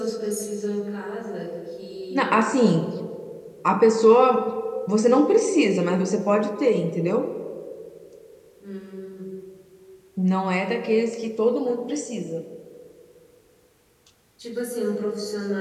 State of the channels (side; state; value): both; identical; correlation 1.00